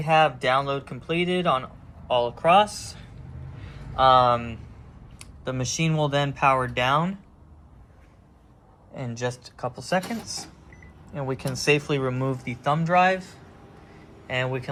have download completed on all across. The machine will then power down in just a couple seconds, and we can safely remove the thumb drive, and we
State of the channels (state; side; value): identical; both; correlation 1.00